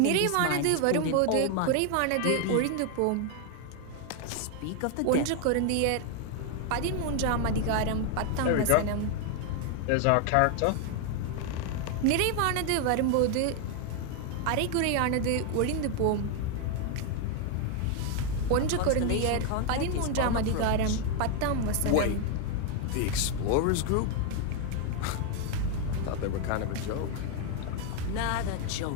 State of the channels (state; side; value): different; both; correlation 0.01